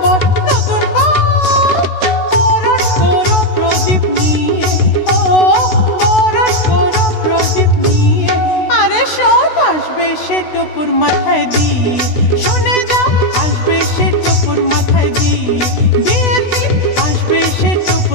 বর, নতুন বর। বরণ করো প্রদীপ নিয়ে, ও বরণ করো প্রদীপ নিয়ে। আরে সব আসবে সে টোপর মাথায় দিয়ে, শুনে যাও, আসবে সে টোপর মাথায় দিয়ে। বিয়ের দিন আসবে সে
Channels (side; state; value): right; late; 16 ms